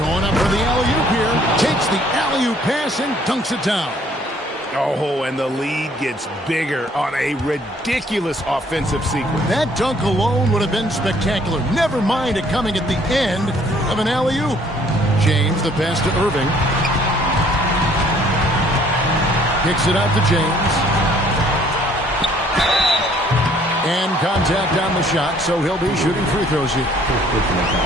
up for the alley-oop here. Takes the alley-oop pass and dunks it down. Oh, and the lead gets bigger on a ridiculous offensive sequence. That dunk alone would have been spectacular. Never mind it coming at the end of an alley-oop. James, the pass to Irving. Kicks it out to James. And contact on the shot, so he'll be shooting free throws here.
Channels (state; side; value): normal; both; correlation 0.60